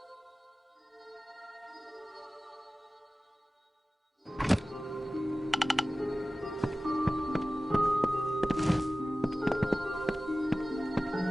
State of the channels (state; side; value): normal; both; correlation 0.96